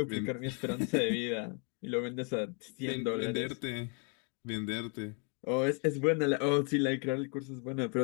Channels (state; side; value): quieter; right; 37.1 dB